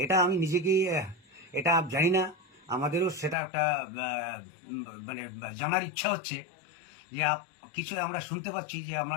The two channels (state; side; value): drops out; right; at 3.4 s